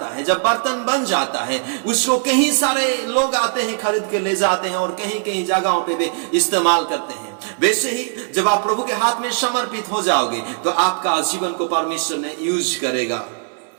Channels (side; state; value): left; silent; 61 dB below the other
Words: है, जब बर्तन बन जाता है, उसको कहीं सारे लोग आते हैं, खरीद के ले जाते हैं और कहीं कहीं जगहों पे भी इस्तेमाल करते हैं। वैसे ही जब आप प्रभु के हाथ में समर्पित हो जाओगे तो आपका जीवन को परमेश्वर ने यूज करेगा।